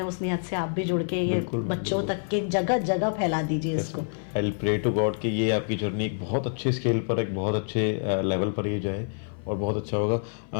उस नियत से आप भी जुड़ के ये बच्चों तक के जगह जगह फैला दीजिए इसको। I will pray to God कि ये आपकी जर्नी एक बहुत अच्छे स्केल पर, एक बहुत अच्छे लेवल पर ये जाए और बहुत अच्छा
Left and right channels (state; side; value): silent; right; 59 dB below the other